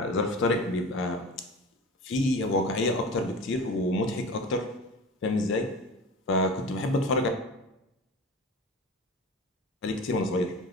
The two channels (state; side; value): normal; both; correlation 0.34